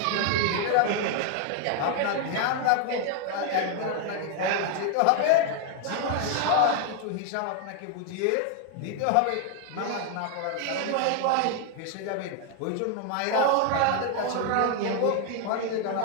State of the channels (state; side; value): different; both; correlation 0.00